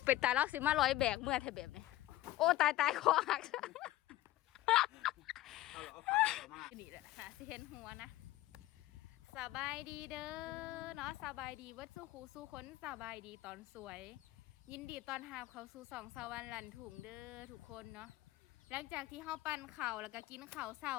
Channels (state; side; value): quieter; right; 15.9 dB